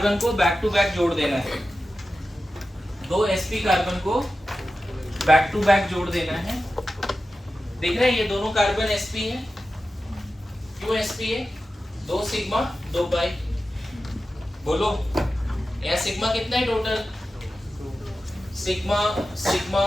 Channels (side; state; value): both; normal; correlation 0.93